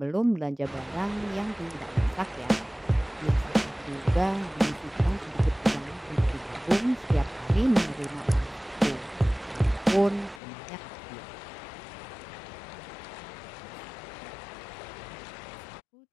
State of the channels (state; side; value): drops out; right; at 10.4 s